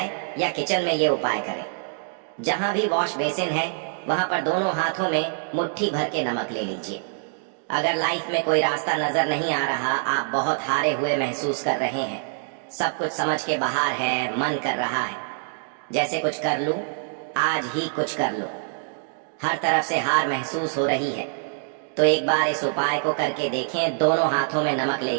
या किचन में ये उपाय करें। जहां भी वॉश बेसिन है वहां पर दोनों हाथों में मुट्ठी भर के नमक ले लीजिए। अगर लाइफ में कोई रास्ता नजर नहीं आ रहा, आप बहुत हारे हुए महसूस कर रहे हैं, सब कुछ समझ के बाहर है, मन कर रहा है जैसे कुछ कर लूं, आज ही कुछ कर लूं, हर तरफ से हार महसूस हो रही है, तो एक बार इस उपाय को करके देखें। दोनों हाथों में नमक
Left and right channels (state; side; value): silent; left; digital silence